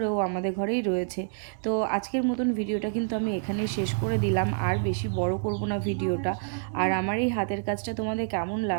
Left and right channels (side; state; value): left; silent; 60 dB below the other